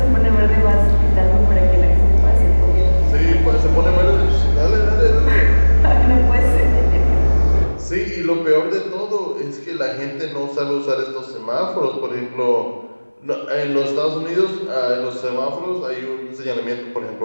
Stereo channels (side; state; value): both; inverted; correlation -1.00